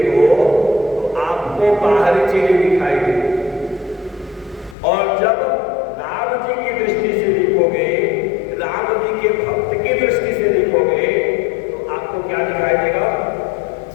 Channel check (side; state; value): right; drops out; at 4.8 s